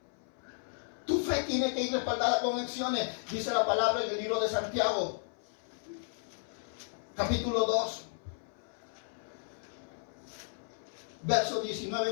Tu fe tiene que ir respaldada con acciones. Dice la palabra en el libro de Santiago. Capítulo 2, verso 19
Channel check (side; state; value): right; silent; 55 dB below the other